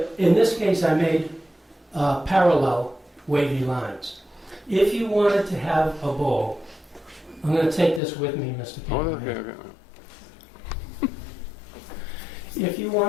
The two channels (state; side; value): drops out; right; at 8.0 s